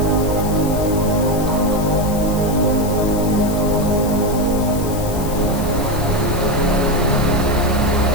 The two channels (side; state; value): left; noise; hiss, 13 dB below the sound